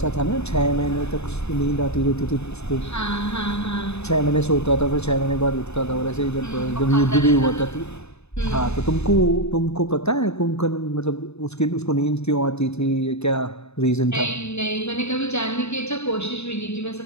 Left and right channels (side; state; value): right; late; 0.80 ms